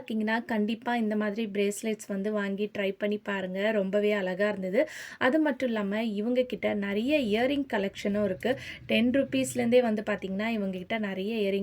கண்டிப்பாக இந்த மாதிரி பிரேஸ்லெட்ஸ் வந்து வாங்கி ட்ரை பண்ணி பாருங்கள். ரொம்பவே அழகாக இருந்தது. அது மட்டும் இல்லாமல் இவங்கக்கிட்ட நிறைய இயரிங் கலெக்ஷனும் இருக்குது. 10 ருப்பீஸ்லேருந்தே வந்து பார்த்திங்கன்னா இவங்கக்கிட்ட நிறைய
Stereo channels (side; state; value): both; identical; correlation 1.00